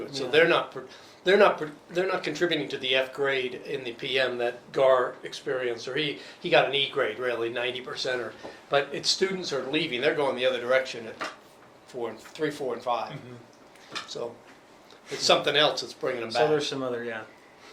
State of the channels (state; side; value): identical; both; correlation 1.00